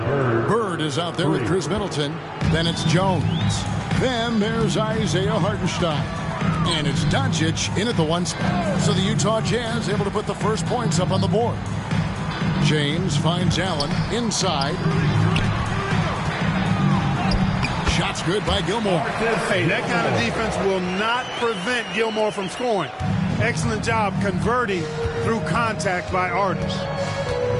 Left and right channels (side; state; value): both; identical; correlation 1.00